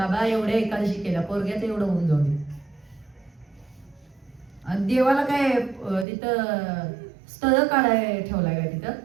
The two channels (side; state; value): left; drops out; at 6.1 s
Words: एवढ्या एकादशी केल्या, पोरग्याचं एवढं होऊन जाऊ दे. आणि देवाला काय तिथं स्थळ काढाय ठेवलाय का तिथं?